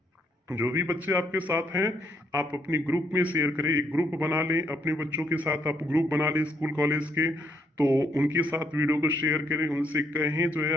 जो भी बच्चे आपके साथ हैं आप अपनी ग्रुप में शेयर करें, एक ग्रुप बना लें अपने बच्चों के साथ, आप ग्रुप बना लें स्कूल कॉलेज के, तो उनके साथ वीडियो को शेयर करें, उनसे कहें जो है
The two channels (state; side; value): normal; both; correlation 0.73